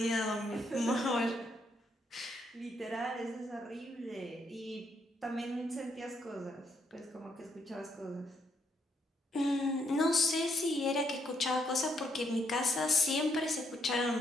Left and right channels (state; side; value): normal; both; correlation 0.74